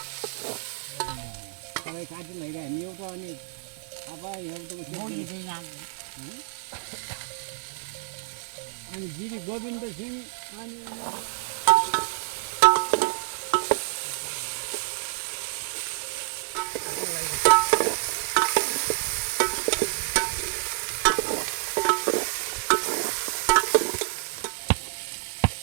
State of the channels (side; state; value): left; silent; digital silence